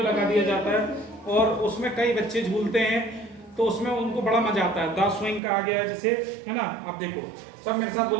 लगा दिया जाता है और उसमें कई बच्चे झूलते हैं तो उसमें उनको बड़ा मजा आता है। द स्विंग का आ गया है जिसे, है ना। अब देखो सब मेरे साथ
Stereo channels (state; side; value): drops out; left; at 5.4 s